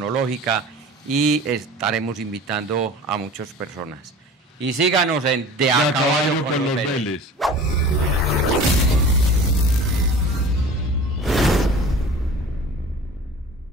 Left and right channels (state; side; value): normal; both; correlation 0.40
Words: y estaremos invitando a muchas personas. Y síganos en De a Caballo con los Vélez.